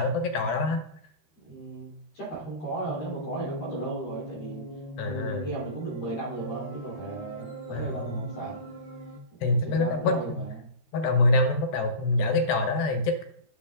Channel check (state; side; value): late; right; 14 ms